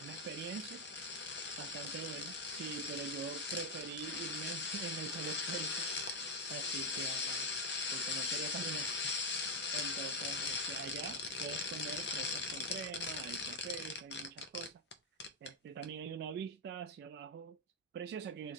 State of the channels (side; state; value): both; normal; correlation 0.01